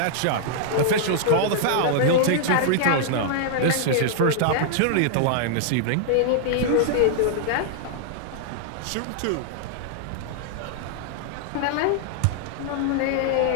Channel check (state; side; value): different; both; correlation -0.01